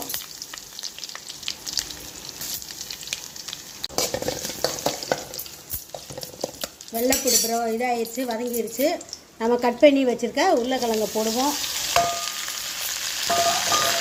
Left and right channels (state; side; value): identical; both; correlation 1.00